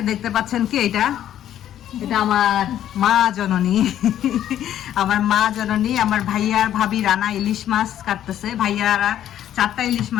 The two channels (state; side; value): quieter; right; 11.3 dB